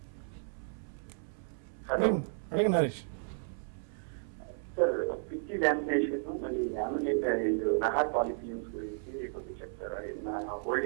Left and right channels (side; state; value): left; silent; 55 dB below the other